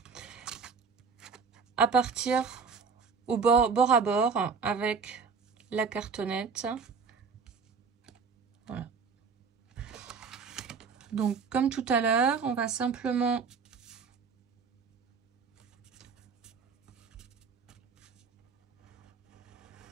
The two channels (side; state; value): left; quieter; 5.4 dB